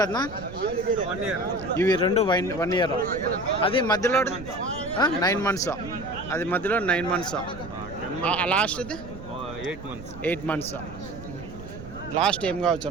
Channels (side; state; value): right; noise; rumble, 13 dB below the sound